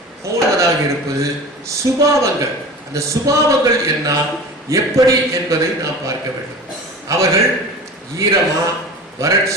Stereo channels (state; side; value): normal; both; correlation 0.35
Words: போனதாக இருப்பது சுபாவங்கள். அந்த சுபாவங்கள் என்ன, எப்படி என்பதை நாம் பார்க்க வேண்டும். அவர்கள் ஈரமா,